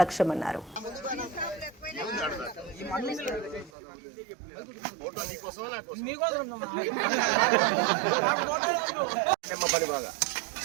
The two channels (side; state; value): left; drops out; at 3.7 s